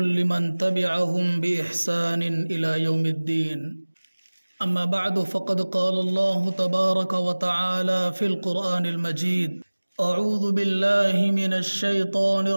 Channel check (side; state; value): both; inverted; correlation -1.00